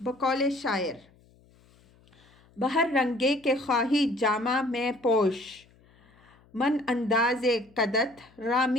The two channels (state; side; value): noise; left; hum, 30 dB below the sound